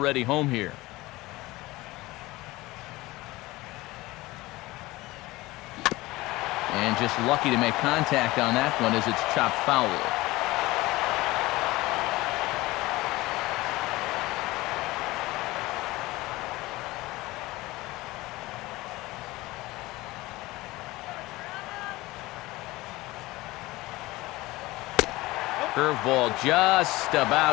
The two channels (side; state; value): right; quieter; 19.8 dB